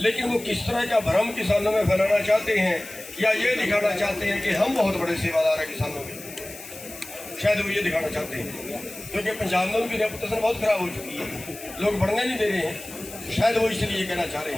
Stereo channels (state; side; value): noise; left; hiss, 15 dB below the sound